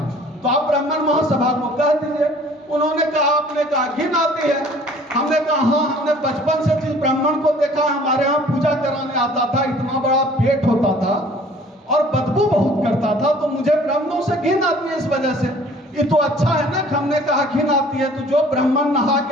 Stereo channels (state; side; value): normal; both; correlation 0.52